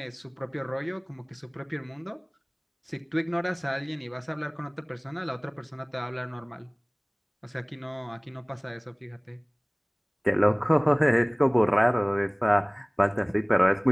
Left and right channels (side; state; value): both; identical; correlation 1.00